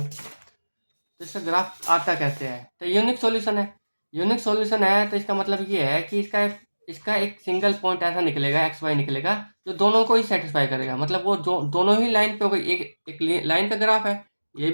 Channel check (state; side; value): inverted; both; correlation -1.00